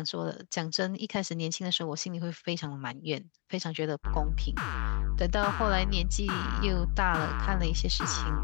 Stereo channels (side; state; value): right; quieter; 31.5 dB